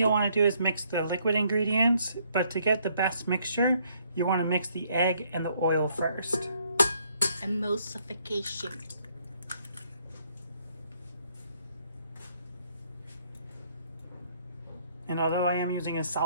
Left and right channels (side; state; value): both; inverted; correlation -0.68